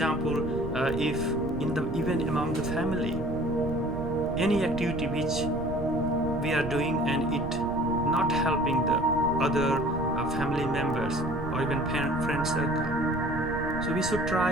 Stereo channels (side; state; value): right; noise; rumble, 8 dB below the sound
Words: if even among the family, any activity which we are doing and it not helping the other family members or even friend circle, so we should